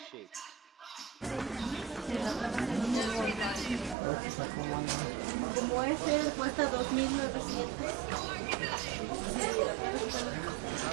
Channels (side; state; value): left; drops out; at 4.0 s